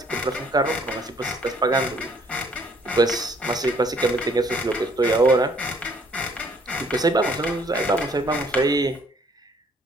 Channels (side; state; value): both; normal; correlation 0.62